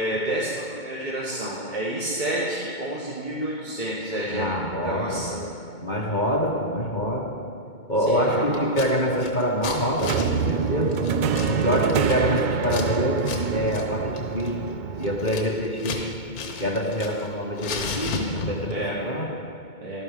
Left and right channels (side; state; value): right; late; 2.2 ms